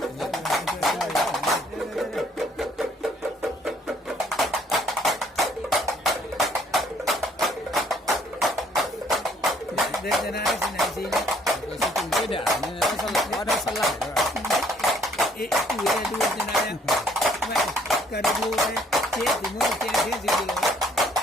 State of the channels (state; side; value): normal; both; correlation 0.63